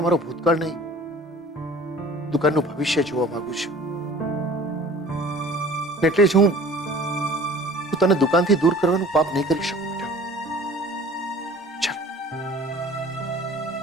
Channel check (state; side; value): normal; both; correlation 0.47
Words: મારો ભૂતકાળ નહીં, દુકાનનું ભવિષ્ય જોવા માંગુ છું. એટલે જ હું તને દુકાનથી દૂર કરવાનું પાપ નહીં કરી શકું. બેટા ચાલ,